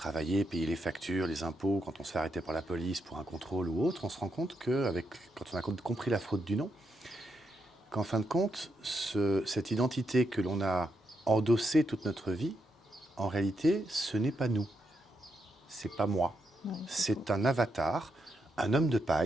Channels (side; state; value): both; normal; correlation 0.82